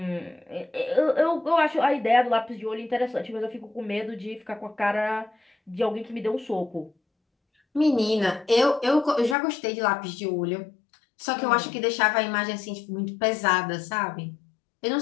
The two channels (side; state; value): right; drops out; at 9.3 s